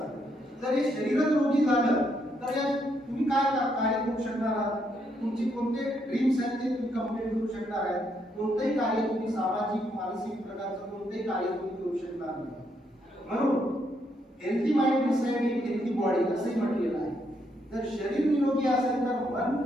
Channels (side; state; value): both; normal; correlation 0.76